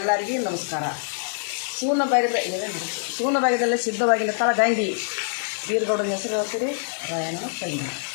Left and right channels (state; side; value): silent; right; digital silence